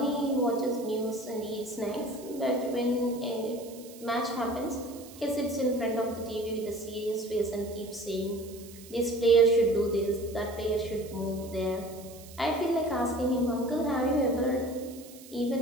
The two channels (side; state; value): right; noise; hiss, 19 dB below the sound